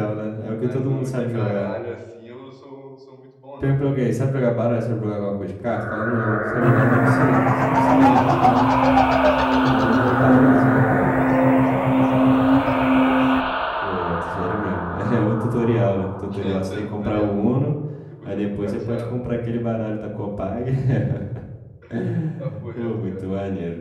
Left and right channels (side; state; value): both; identical; correlation 1.00